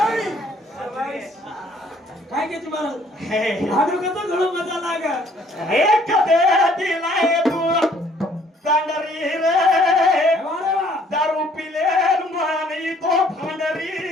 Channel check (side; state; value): both; normal; correlation 0.61